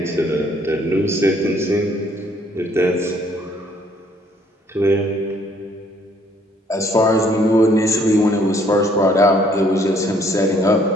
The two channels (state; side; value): normal; both; correlation 0.63